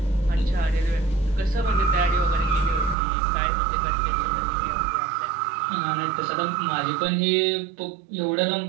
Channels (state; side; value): drops out; left; at 3.0 s